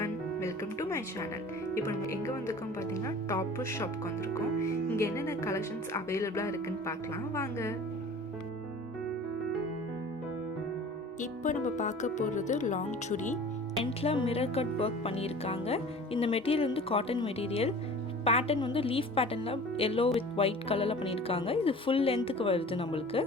welcome to my channel. இப்போ நம்ம எங்கே வந்திருக்கோம் பார்த்தீங்கன்னா டாப்பர் ஷாப்க்கு வந்திருக்கோம். இங்கே என்னென்ன கலெக்ஷன்ஸ் அவைலபிளாக இருக்குன்னு பார்க்கலாம் வாங்க. இப்போ நம்ம பார்க்க போகிறது லாங் சுடி. எண்டில் மிரர் கட் ஒர்க் பண்ணியிருக்காங்க. இந்த மெட்டீரியல் வந்து காட்டன் மெட்டீரியல். பேட்டர்ன் வந்து லீஃப் பேட்டர்னில் எல்லோ வித் ஒயிட் கலரில் பண்ணியிருக்காங்க. இது ஃபுல் லென்த்துக்கு வருது நம்மளுக்கு.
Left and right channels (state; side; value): normal; both; correlation 0.43